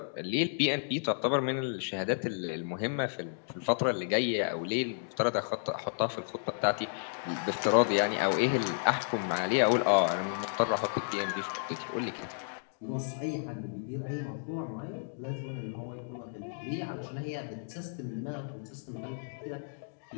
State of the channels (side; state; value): right; silent; digital silence